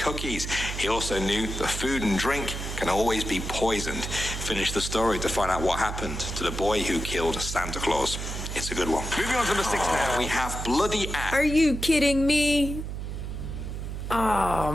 He also knew that food and drink can always be poisoned. Finish the story to find out what happened to the boy who killed Santa Claus. It's a good one. Moving on to number 6 now, we have Bloody Axe. Are you kidding me? Oh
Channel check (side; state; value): right; noise; hum, 6 dB below the sound